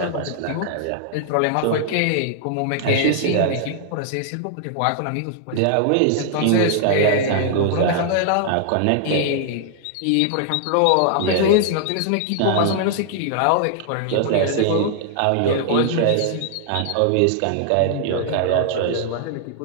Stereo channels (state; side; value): different; both; correlation -0.01